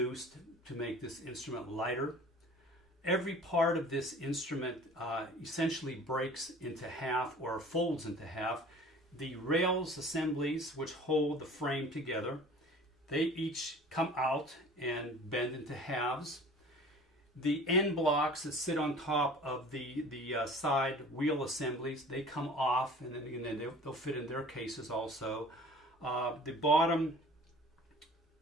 to make this instrument lighter. Every part of this instrument essentially breaks into half or folds into half. The rails assemblies which hold the frame together, they each come out and bend into halves. The end blocks that sit on top of the side wheel assemblies, they come off, and then they'll fit in their cases also. The bottom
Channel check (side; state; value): both; normal; correlation 0.45